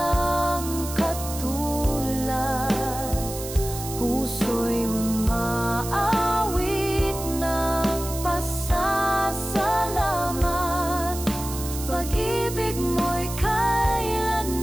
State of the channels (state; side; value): noise; right; hiss, 10 dB below the sound